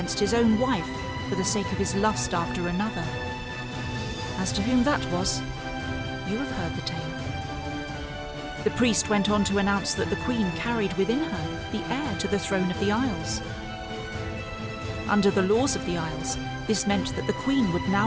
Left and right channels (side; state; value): both; identical; correlation 1.00